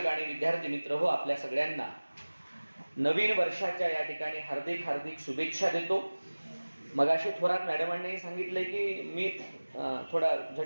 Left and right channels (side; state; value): both; inverted; correlation -1.00